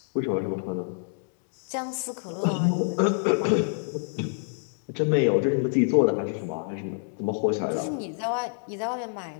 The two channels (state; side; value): silent; right; digital silence